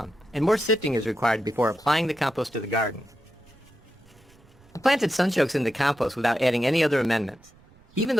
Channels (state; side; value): noise; right; rumble, 28 dB below the sound